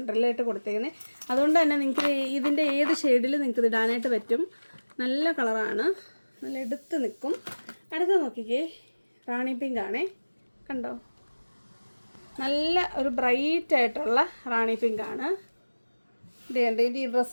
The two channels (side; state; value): both; inverted; correlation -1.00